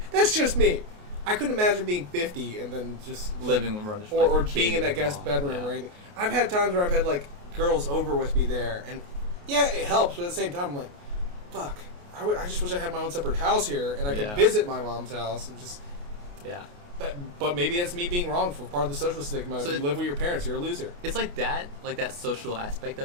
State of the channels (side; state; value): left; late; 28 ms